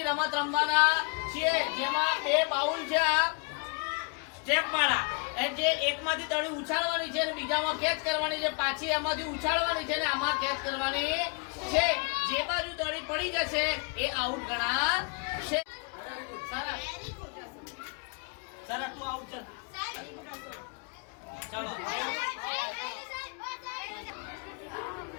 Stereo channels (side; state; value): right; quieter; 32.9 dB